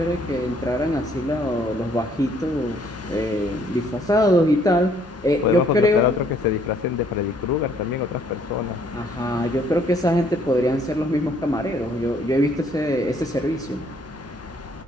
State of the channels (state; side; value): normal; both; correlation 0.64